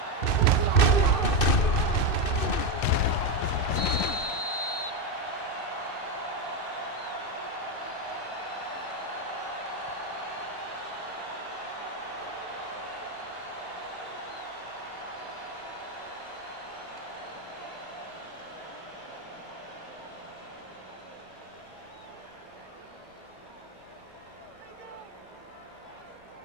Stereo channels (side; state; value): right; late; 2.6 ms